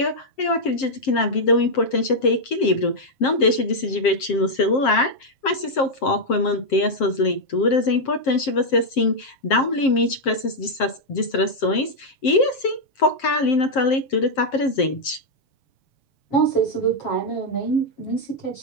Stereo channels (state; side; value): late; right; 7.5 ms